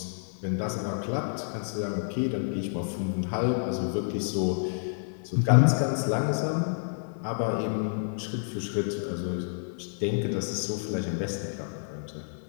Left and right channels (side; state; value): right; silent; digital silence